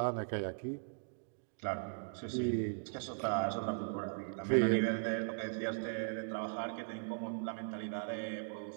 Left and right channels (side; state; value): left; silent; digital silence